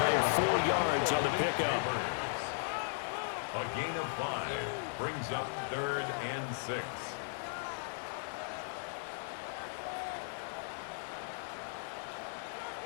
4 yards on the pickup. A gain of 5 brings up 3rd and 6.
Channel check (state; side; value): silent; right; digital silence